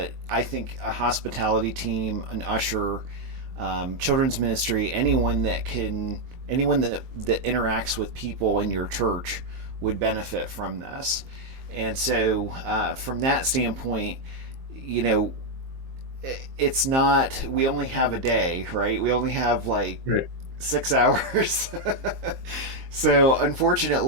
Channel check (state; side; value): late; left; 23 ms